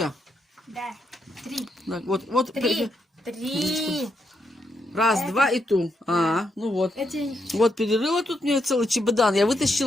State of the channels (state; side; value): normal; both; correlation 0.80